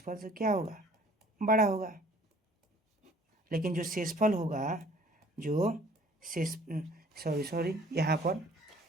से क्या होगा, बड़ा होगा। लेकिन जो शेषफल होगा, जो शेष सॉरी यहाँ पर,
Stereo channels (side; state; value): both; normal; correlation 0.55